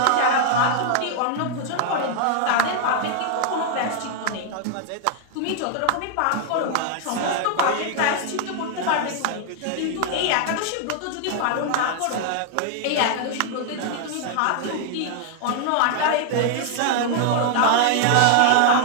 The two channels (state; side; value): different; both; correlation 0.00